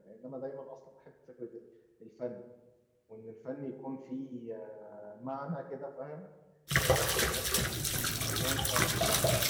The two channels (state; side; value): identical; both; correlation 1.00